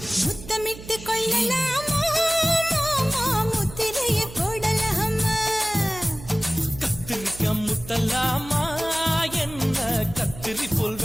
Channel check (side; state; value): right; noise; hum, 15 dB below the sound